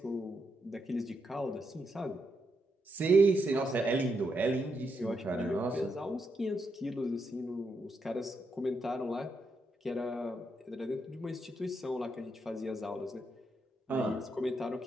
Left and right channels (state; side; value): normal; both; correlation 0.81